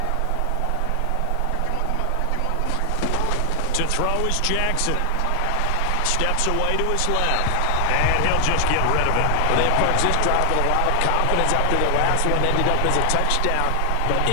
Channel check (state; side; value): different; both; correlation 0.00